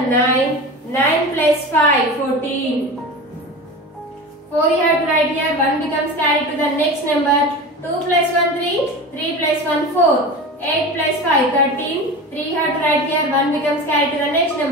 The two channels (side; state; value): both; normal; correlation 0.30